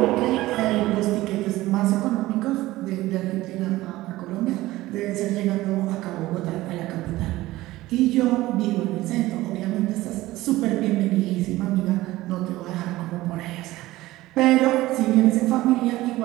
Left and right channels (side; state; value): left; quieter; 17.4 dB